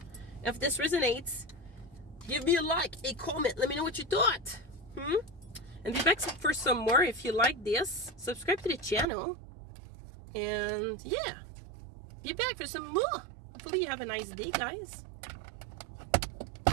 If this resonates, give me a like, a comment. Let me know what you thought. And be back for some more if you like this. Subscribe to the channel. And yeah, be back for some more. Hopefully you have a nice day, guys.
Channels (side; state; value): left; drops out; at 9.1 s